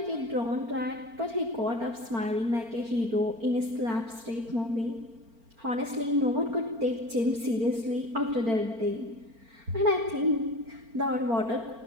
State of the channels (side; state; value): left; late; 4.4 ms